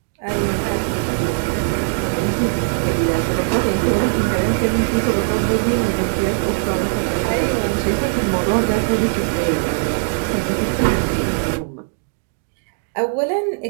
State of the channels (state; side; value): silent; left; digital silence